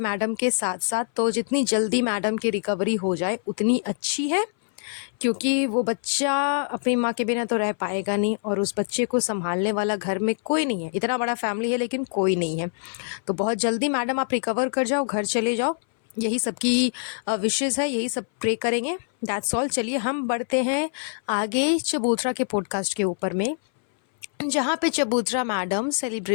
के साथ साथ। तो जितनी जल्दी मैडम की रिकवरी हो जाए उतनी अच्छी है, क्योंकि वो बच्चा अपनी माँ के बिना तो रह पाएगा नहीं और उस बच्चे को संभालने वाला घर में कोई नहीं है। इतना बड़ा फैमिली है लेकिन कोई नहीं है। तो बहुत जल्दी मैडम आप रिकवर कर जाओ, घर चले जाओ, यही सबकी विशेज़ है, यही सब प्रे करेंगे। That's all. चलिए हम बढ़ते हैं आगे चबूतरा के पॉडकास्ट के ऊपर में, जहाँ पे चबूतरा मैडम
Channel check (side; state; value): right; silent; 60 dB below the other